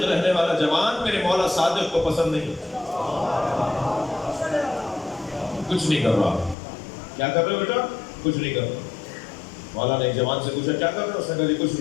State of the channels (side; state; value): right; drops out; at 6.6 s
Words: رہنے والا جوان میرے مولا صادق کو پسند نہیں. کچھ نہیں کر رہا. کیا کر رہے ہو بیٹا؟ کچھ نہیں کر رہا. مولا نے ایک جوان سے پوچھا کیا کر رہے ہو؟ اس نے کہا کچھ